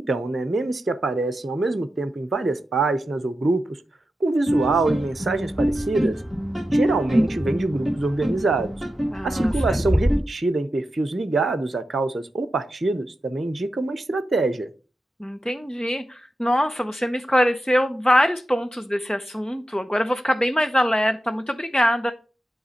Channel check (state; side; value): normal; both; correlation 0.90